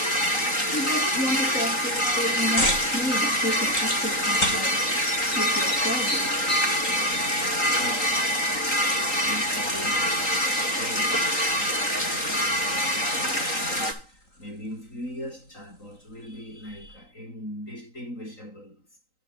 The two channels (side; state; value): right; late; 3.9 ms